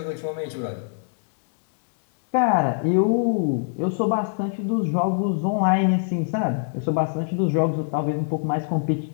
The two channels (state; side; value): silent; right; digital silence